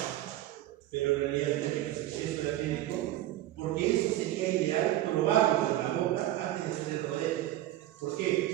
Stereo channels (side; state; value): left; quieter; 14.5 dB